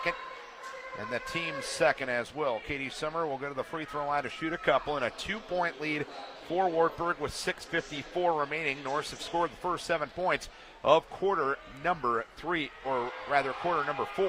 And the team's second as well. Katie Summer will go to the free throw line to shoot a couple, and a 2-point lead for Wartburg with 6:54 remaining. Norse have scored the first 7 points of quarter number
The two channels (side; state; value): both; identical; correlation 1.00